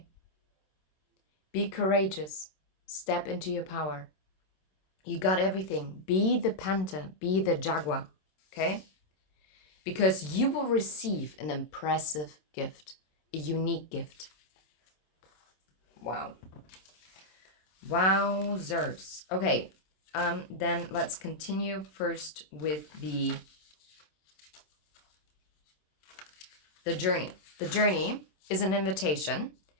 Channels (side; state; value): right; late; 27 ms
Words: Be courageous. Step into your power. You got everything. Be the panther. Be the jaguar. Okay? Because you will receive an impressive gift. A unique gift. Wow. Wowzers. Okay. Then let's continue first with the journey. The journey is an invitation